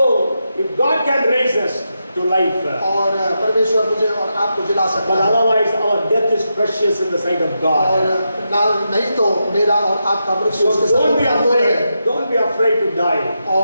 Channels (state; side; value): inverted; both; correlation -0.86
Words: if God can raise us to life, और परमेश्वर मुझे और आपको जिला सकता but है। otherwise our death is precious in the sight of और God. नहीं तो मेरा और आपका मृत्यु उसके So don't be सामने अनमोल है। afraid. Don't be afraid to die.